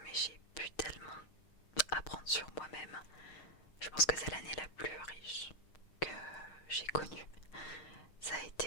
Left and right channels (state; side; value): late; right; 6.4 ms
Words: mais j'ai pu tellement apprendre sur moi-même. Je pense que c'est l'année la plus riche que j'ai connue. Ça a